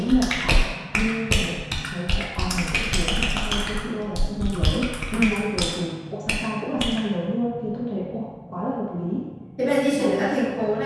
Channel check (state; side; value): identical; both; correlation 1.00